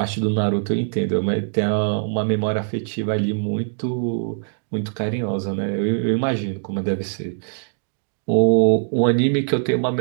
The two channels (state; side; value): silent; left; digital silence